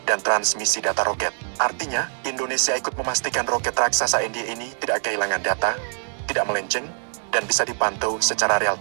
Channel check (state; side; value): silent; left; digital silence